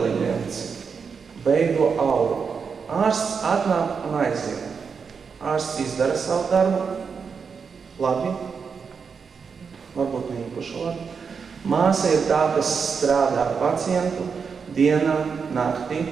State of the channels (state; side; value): quieter; left; 5.8 dB